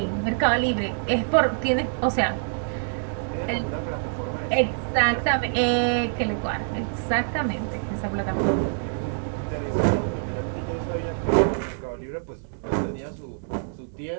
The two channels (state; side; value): silent; left; 61 dB below the other